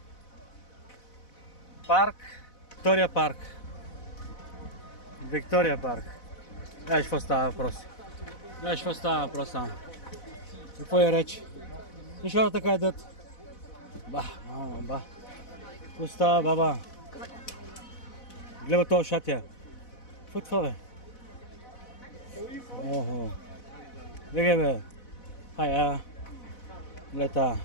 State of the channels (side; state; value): right; late; 4.0 ms